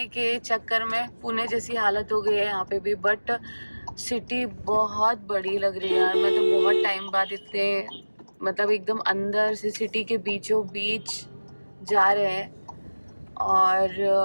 के चक्कर में पुणे जैसी हालत हो गई है यहाँ पे भी। बट सिटी बहुत बड़ी लग रही है यार। मैं तो बहुत टाइम बाद इतने, मतलब एकदम अंदर से सिटी के बीचों बीच जा रहे हैं, और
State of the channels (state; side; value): inverted; both; correlation -1.00